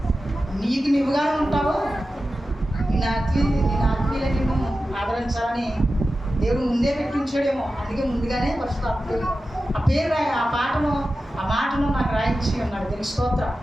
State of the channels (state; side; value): normal; both; correlation 0.93